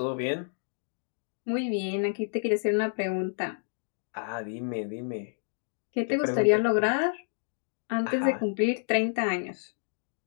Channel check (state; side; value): silent; right; 58 dB below the other